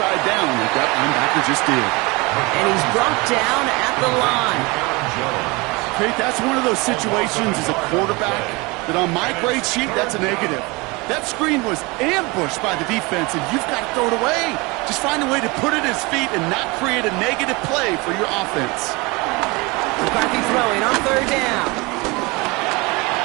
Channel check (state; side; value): quieter; left; 25.4 dB